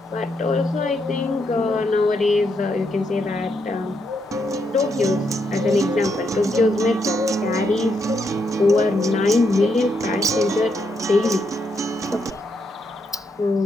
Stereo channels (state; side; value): normal; both; correlation 0.79